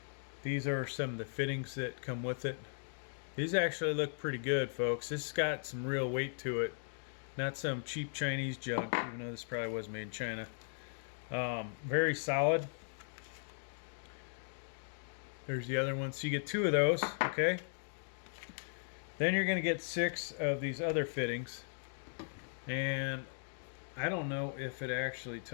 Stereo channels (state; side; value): silent; right; digital silence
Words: These are some of the fittings that come with it. These actually look pretty good, folks. This has got some real weight to it. Not some cheap Chinese junk, even though this probably was made in China. Very solid. There's the other one. So you get two of those, okay? Then you're going to get 6 of these other fittings. And I don't know if it actually